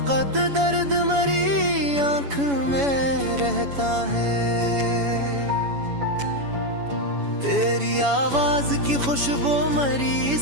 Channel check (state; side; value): late; left; 7.1 ms